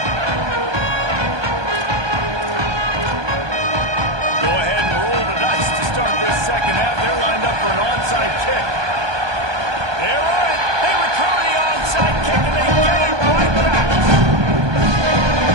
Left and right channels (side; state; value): left; late; 1.2 ms